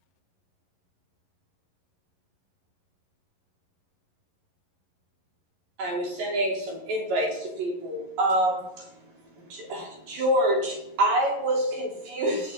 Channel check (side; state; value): left; late; 11 ms